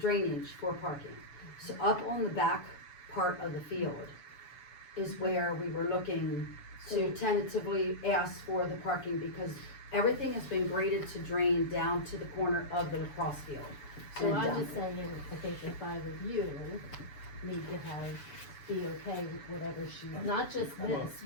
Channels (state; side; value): late; right; 7.0 ms